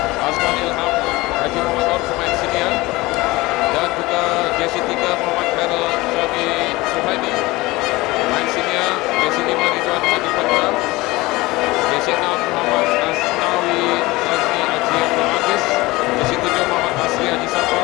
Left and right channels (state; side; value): quieter; right; 20.9 dB